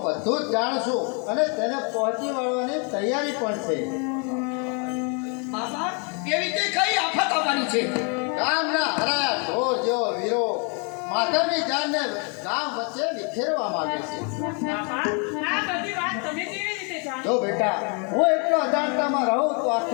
બધું જ જાણું છું અને તેને પહોંચી વળવાની તૈયારી પણ છે. બાપા કેવી તે કઈ આફત આવવાની છે? ગામના હરાયા ઢોર જેવો વીરો માધવની જાનને ગામ વચ્ચે વિખેરવા માંગે છે. બાપા આ બધી વાત તમે કેવી રીતે જાણો? જો બેટા હું એટલો અજાણતામાં રહું તો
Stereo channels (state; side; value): quieter; right; 36.7 dB